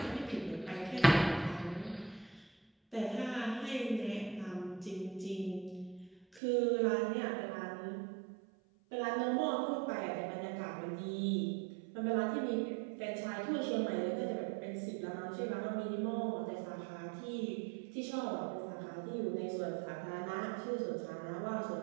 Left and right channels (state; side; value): drops out; left; at 6.4 s